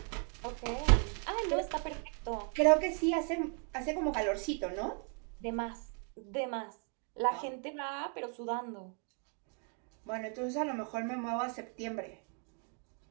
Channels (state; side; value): quieter; left; 39.4 dB